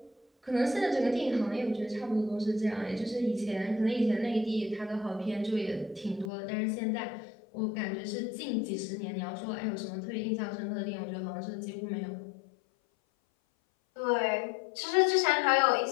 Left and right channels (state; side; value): drops out; right; at 6.3 s